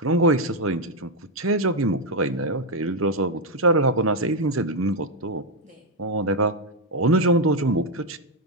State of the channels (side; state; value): both; normal; correlation 0.03